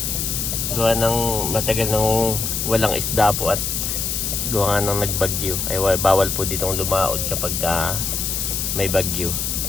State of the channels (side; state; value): left; noise; hiss, 1 dB below the sound